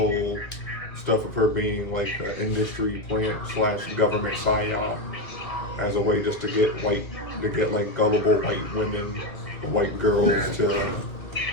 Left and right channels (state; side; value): late; right; 2.3 ms